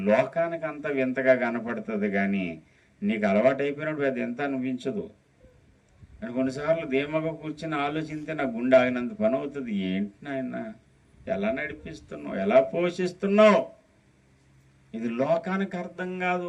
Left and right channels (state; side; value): identical; both; correlation 1.00